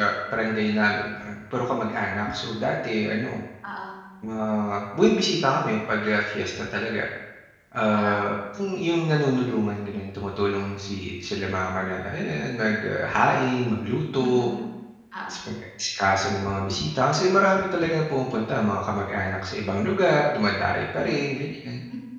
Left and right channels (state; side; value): identical; both; correlation 1.00